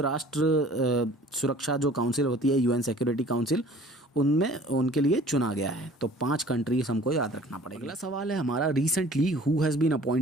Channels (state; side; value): normal; both; correlation 0.49